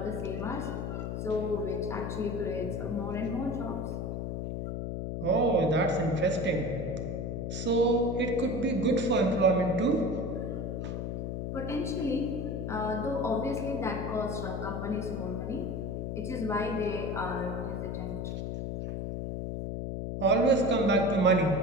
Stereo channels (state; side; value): noise; left; hum, 3 dB below the sound